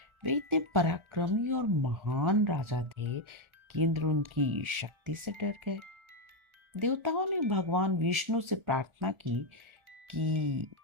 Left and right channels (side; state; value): left; late; 1.4 ms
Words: वे इतने पराक्रमी और महान राजा थे कि इंद्र उनकी शक्ति से डर गए। देवताओं ने भगवान विष्णु से प्रार्थना की कि